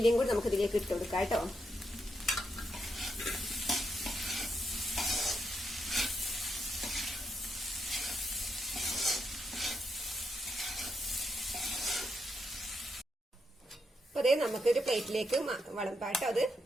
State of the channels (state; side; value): normal; both; correlation 0.81